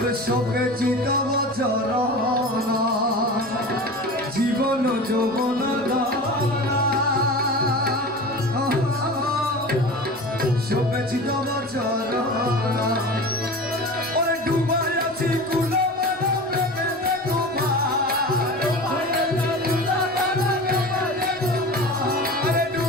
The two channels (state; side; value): noise; right; rumble, 28 dB below the sound